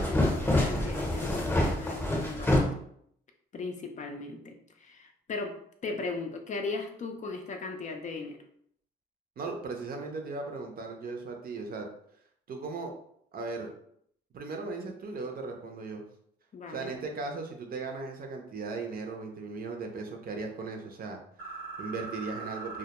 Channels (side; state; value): both; normal; correlation 0.64